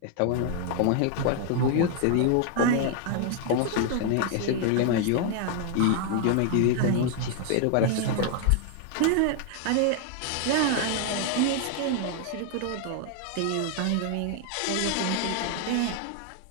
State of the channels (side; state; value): both; different; correlation 0.00